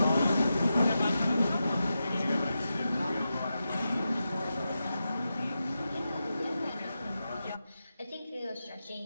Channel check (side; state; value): both; inverted; correlation -0.89